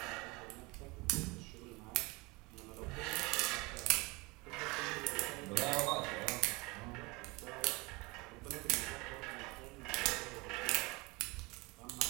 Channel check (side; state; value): left; quieter; 25.2 dB